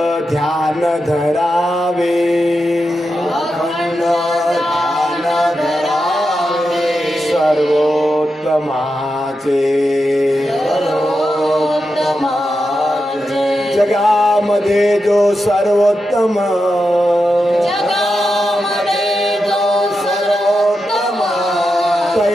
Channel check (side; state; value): both; normal; correlation 0.88